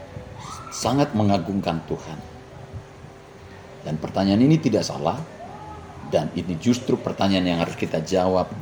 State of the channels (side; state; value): both; identical; correlation 1.00